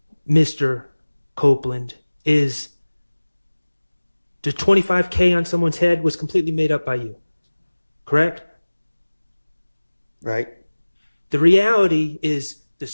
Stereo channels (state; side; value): inverted; both; correlation -1.00